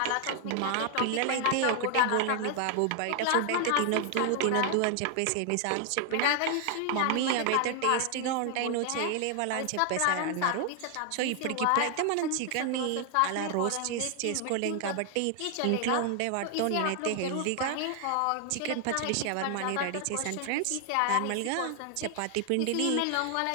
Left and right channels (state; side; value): different; both; correlation 0.00